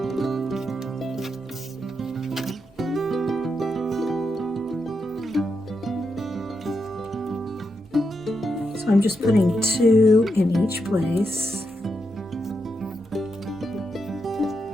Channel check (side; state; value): both; normal; correlation 0.84